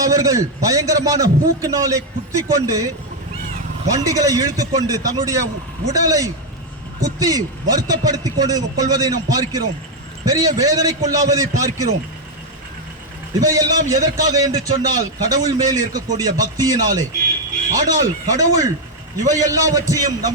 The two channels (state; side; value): normal; both; correlation 0.03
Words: அவர்கள் பயங்கரமான பூக்கினாலே குத்திக் கொண்டு, வண்டிகளை இழுத்துக்கொண்டு தன்னுடைய உடலை குத்தி வருத்தப்படுத்திக் கொள்வதை நாம் பார்க்கிறோம். பெரிய வேதனைக்குள்ளாவதை பார்க்கிறோம். இவையெல்லாம் எதற்காக என்று சொன்னால், கடவுள் மேல் இருக்கக்கூடிய பக்தியினாலே. ஆனால் கடவுள் இவை எல்லாவற்றையும்